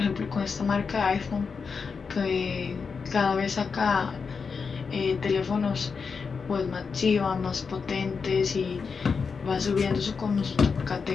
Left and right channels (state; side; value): quieter; right; 5.4 dB